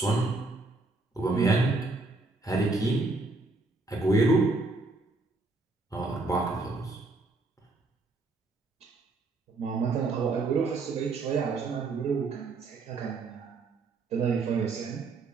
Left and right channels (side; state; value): left; quieter; 3.4 dB